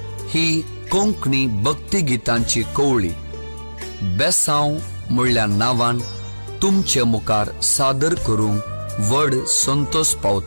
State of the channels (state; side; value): inverted; both; correlation -1.00